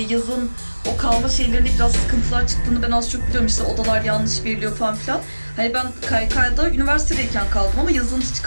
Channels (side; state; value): both; inverted; correlation -1.00